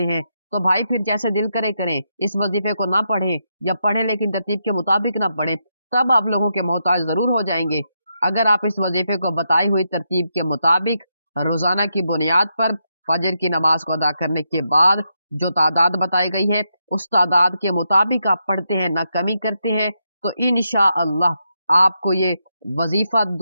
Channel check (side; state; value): both; inverted; correlation -0.83